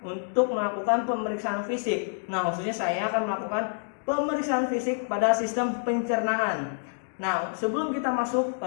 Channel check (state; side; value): silent; right; digital silence